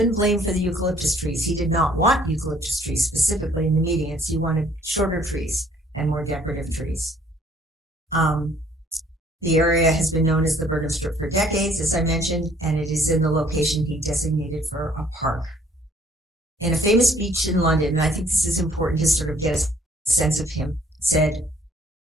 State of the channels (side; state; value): both; normal; correlation 0.60